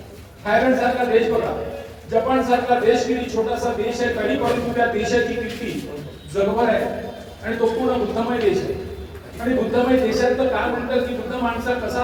थायलंड सारखा देश बघा. जपान सारखा देश किती छोटासा देश आहे, तरी परंतु त्या देशाची कीर्ती जगभर आहे आणि तो पूर्ण बुद्धमय देश आहे. आणि बुद्धमय देशात तर काय म्हणतात की बुद्ध माणसा कसा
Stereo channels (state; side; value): identical; both; correlation 1.00